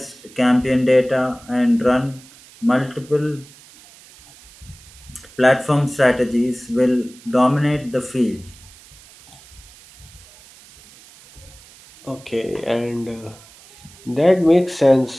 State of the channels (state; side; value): noise; right; hiss, 23 dB below the sound